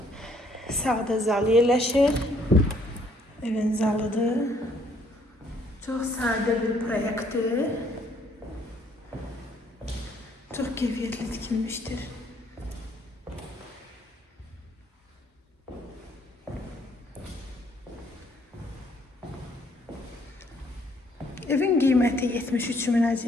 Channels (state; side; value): normal; both; correlation 0.65